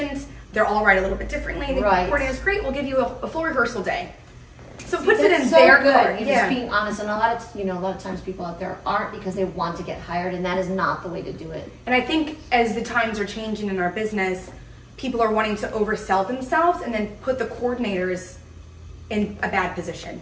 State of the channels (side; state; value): both; identical; correlation 1.00